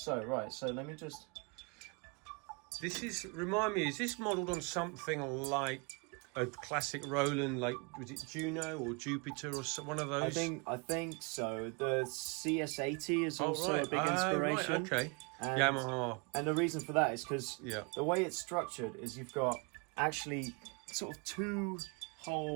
let me just. Remind me, is this modelled on something like a classic Roland, like was it Juno or Jupiter or one of those? I think so. The CS80 is also a big inspiration. Right, okay. Yamaha. And the reason for that is because Yeah. the way it's structured is you've got actually sort of two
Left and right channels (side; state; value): left; quieter; 32.3 dB